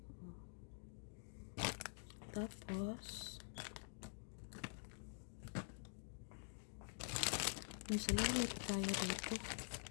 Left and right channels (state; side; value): silent; right; digital silence